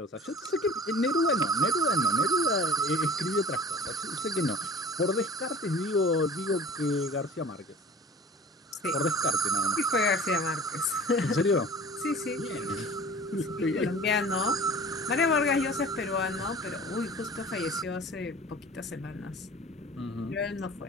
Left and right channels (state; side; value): normal; both; correlation 0.42